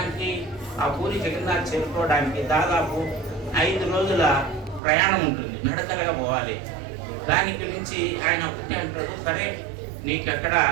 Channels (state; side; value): drops out; left; at 4.8 s